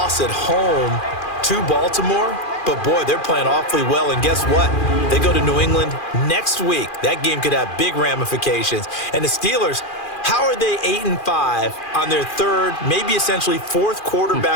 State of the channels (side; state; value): right; late; 2.4 ms